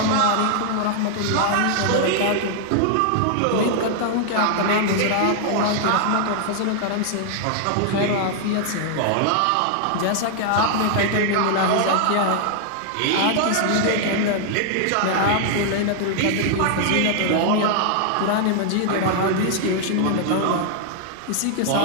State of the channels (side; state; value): both; different; correlation 0.00